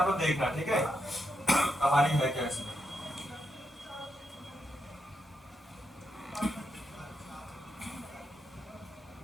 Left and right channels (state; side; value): normal; both; correlation 0.83